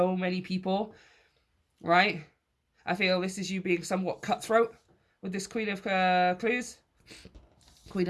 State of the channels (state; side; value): identical; both; correlation 1.00